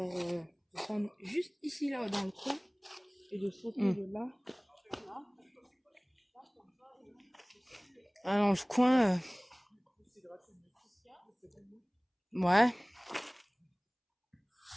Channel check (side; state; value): both; identical; correlation 1.00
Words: de prendre juste ici, là, dans le coin. Et de sauter de là. Ah, dans le coin. Ouais.